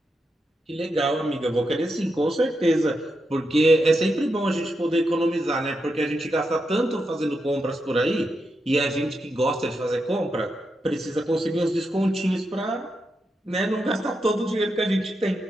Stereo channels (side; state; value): both; normal; correlation 0.85